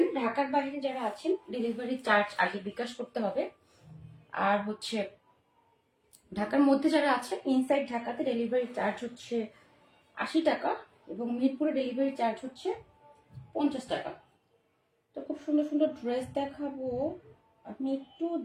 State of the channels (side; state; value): both; identical; correlation 1.00